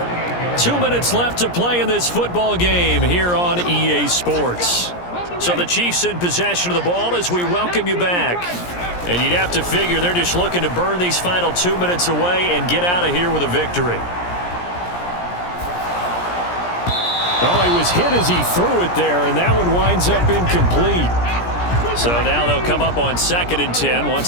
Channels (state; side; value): late; right; 17 ms